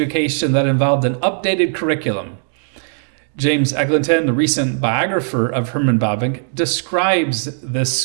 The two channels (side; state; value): left; silent; digital silence